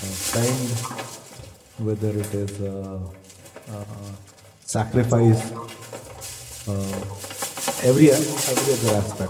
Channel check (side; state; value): both; identical; correlation 1.00